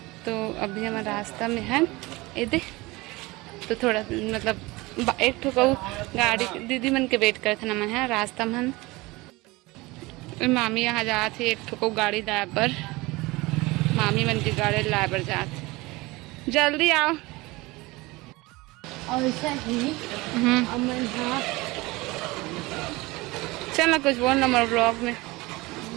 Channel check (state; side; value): quieter; left; 22.1 dB